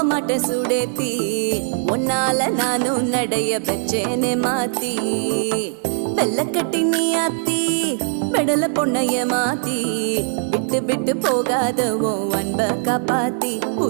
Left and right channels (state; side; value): silent; left; 65 dB below the other